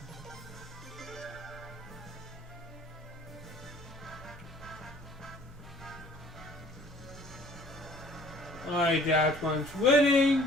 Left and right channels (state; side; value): normal; both; correlation 0.54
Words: Alright, that one's winning.